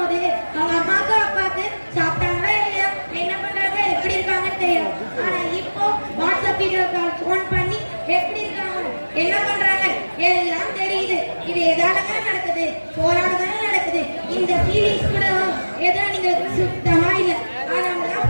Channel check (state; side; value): inverted; both; correlation -1.00